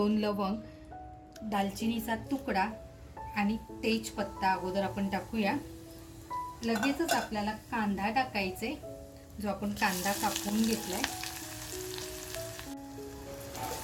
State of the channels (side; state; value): both; identical; correlation 1.00